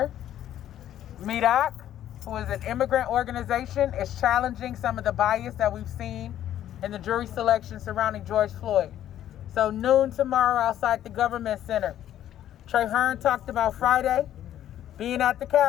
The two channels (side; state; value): right; quieter; 11.6 dB